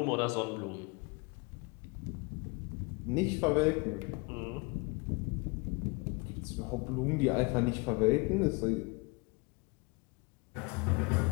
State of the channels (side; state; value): right; quieter; 29.0 dB